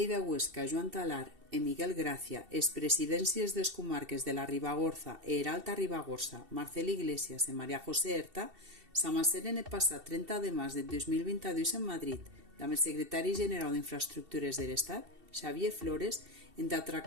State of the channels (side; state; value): left; late; 2.7 ms